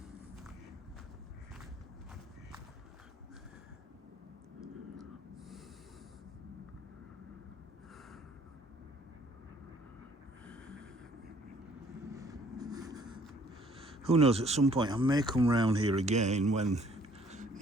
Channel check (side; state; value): both; normal; correlation 0.60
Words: Who knows, at some point I may come round here again when,